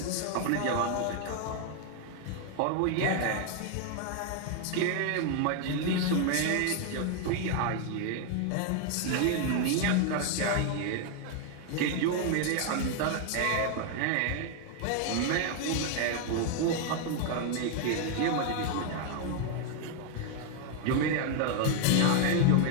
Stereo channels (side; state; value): both; different; correlation 0.00